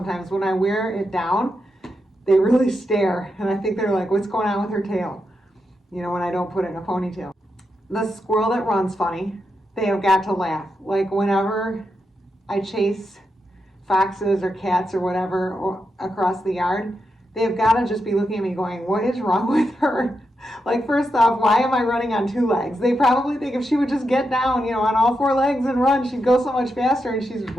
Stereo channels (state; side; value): normal; both; correlation 0.86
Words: when I wear it down. They really stare, and I think they're like, what's going on with her tail? You know, when I don't put it in a ponytail. The squirrel that runs funny, they have got to laugh. Like whenever I chase foxes or cats or whatever across the yard, they've got to just be looking at me going, what is wrong with her? Like, first off, why am I running on 2 legs? They probably think if she would just get down, you know, on all 4 legs and run, she'd go so much faster, and she's